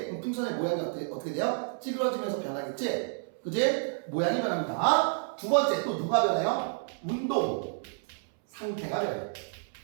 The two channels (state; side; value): silent; left; 58 dB below the other